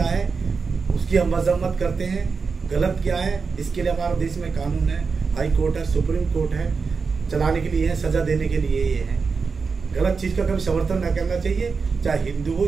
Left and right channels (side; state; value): left; quieter; 5.0 dB